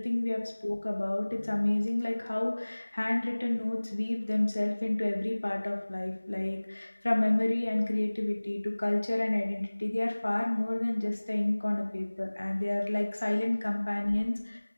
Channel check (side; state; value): both; inverted; correlation -1.00